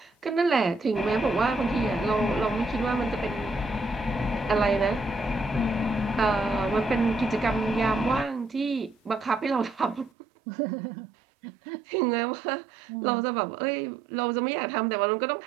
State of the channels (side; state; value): left; drops out; at 10.1 s